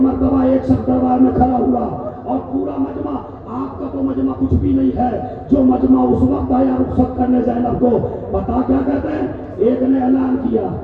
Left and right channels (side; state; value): both; identical; correlation 1.00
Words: ایک شخص دربار میں کھڑا ہوا اور پورا مجمع، آپ کا تو مجمع کچھ بھی نہیں ہے، جو مجمع اس وقت آیا رخصت کرنے زینب کو، پتا کیا کہتے ہیں؟ ایک نے اعلان کیا